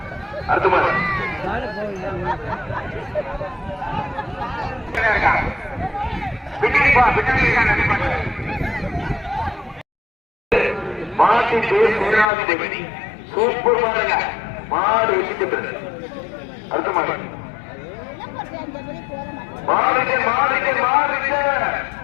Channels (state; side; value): drops out; right; at 12.3 s